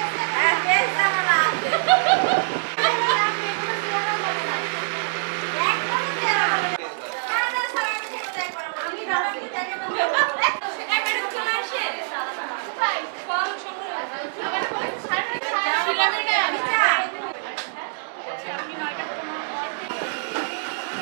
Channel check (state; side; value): silent; left; digital silence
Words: হ্যাঁ ফেস জানা আছে